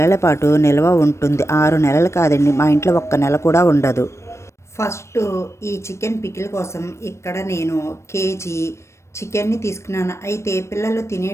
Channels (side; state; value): right; late; 0.13 ms